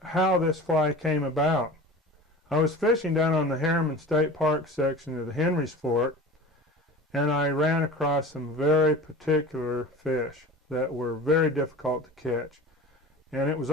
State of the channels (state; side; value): normal; both; correlation 0.37